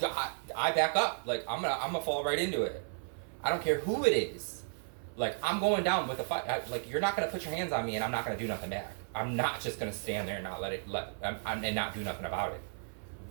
back up. Like, I'm gonna fall right into it. I don't care who it is. Like, I'm going down with a fight. Like, you're not gonna put your hands on me and I'm not gonna do nothing back. I'm not just gonna stand there and not and not do nothing about it.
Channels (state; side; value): silent; left; 55 dB below the other